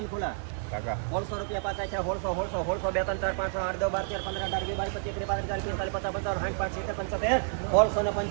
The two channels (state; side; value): silent; left; digital silence